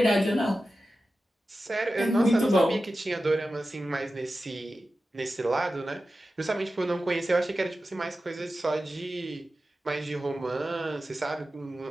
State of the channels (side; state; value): both; normal; correlation 0.93